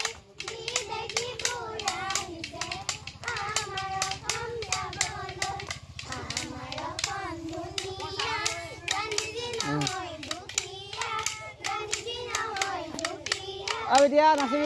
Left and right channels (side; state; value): both; identical; correlation 1.00